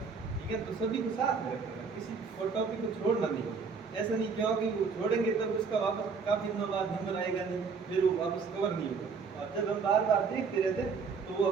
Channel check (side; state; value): left; quieter; 5.3 dB